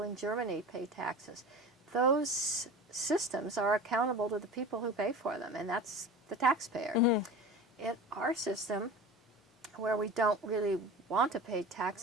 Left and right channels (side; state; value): both; normal; correlation 0.35